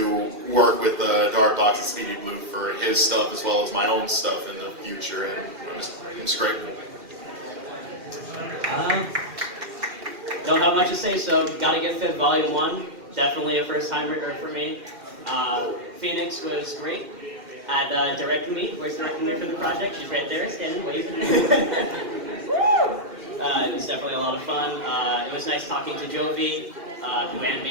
work with Dark Docs and Speedy Blue for his stuff as well as my own stuff in the future, and I'm just grateful. Don't have much to say, so gotta get Fifth Volume 1. Definitely a first time for me. Phoenix was great at directing me, voice directing me for the project. She's right there, standing, waving. It was definitely a lot of fun. It was nice talking to Jovi. who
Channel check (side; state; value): left; late; 2.1 ms